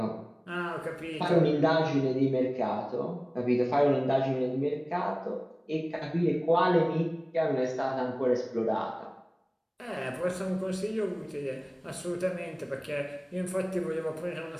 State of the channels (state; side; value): identical; both; correlation 1.00